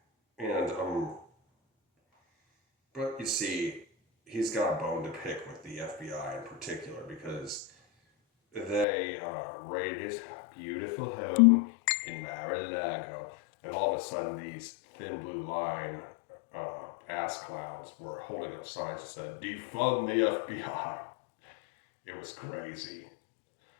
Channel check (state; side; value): drops out; right; at 8.8 s